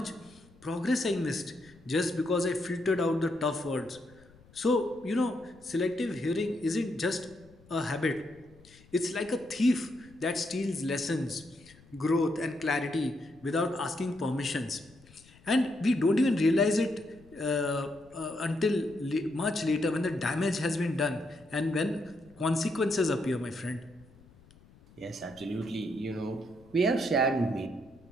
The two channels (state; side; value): noise; left; rumble, 26 dB below the sound